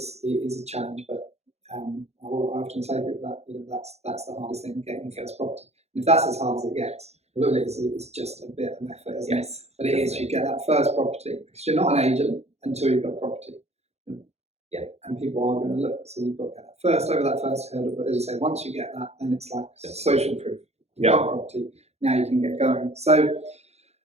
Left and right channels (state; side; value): late; left; 0.31 ms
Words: a challenge, but I often say to people that that's the hardest thing, getting your first property. And if that's as hard as it gets, really, it's just a bit of effort, isn't it? But it is. You get that first property, because you're not an agent until you've got property. And people are going to look. So you've got to get that first, over that first hurdle. But as you say, once you get that, then it's like social proof. You've got property. Now you can get going. So,